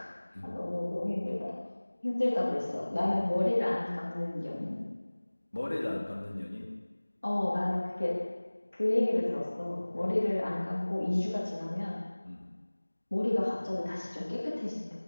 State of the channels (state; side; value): inverted; both; correlation -1.00